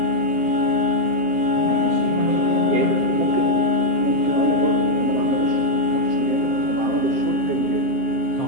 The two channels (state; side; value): late; left; 7.6 ms